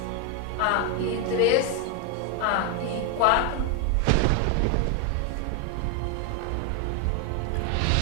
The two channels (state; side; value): different; both; correlation 0.01